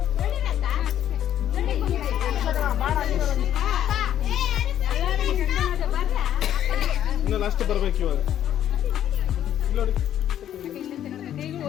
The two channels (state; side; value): quieter; right; 10.9 dB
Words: ಇನ್ನು ಲಾಸ್ಟ್ ಬರ್ಬೇಕು ಇವಾಗ. ನೋಡಿ